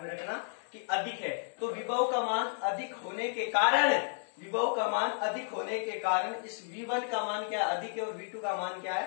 रखना कि अधिक है। तो विभव का मान अधिक होने के कारण, विभव का मान अधिक होने के कारण इस V1 का मान क्या अधिक है और V2 का मान क्या है,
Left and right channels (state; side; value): silent; right; digital silence